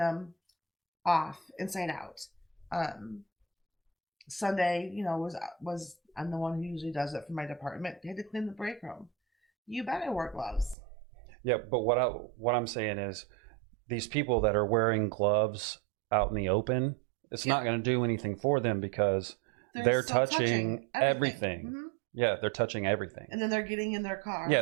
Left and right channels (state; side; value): drops out; left; at 10.8 s